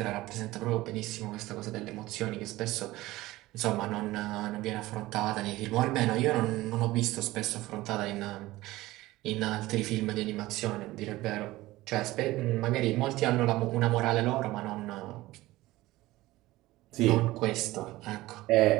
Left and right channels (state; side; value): quieter; left; 18.0 dB